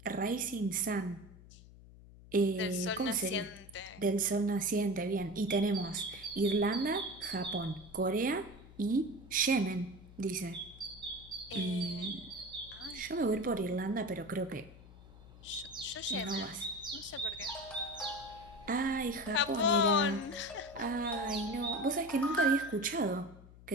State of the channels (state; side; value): noise; left; hum, 20 dB below the sound